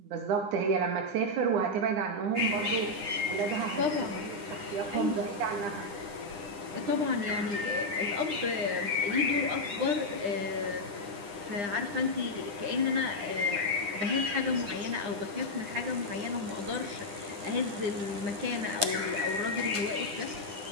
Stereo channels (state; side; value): late; left; 9.9 ms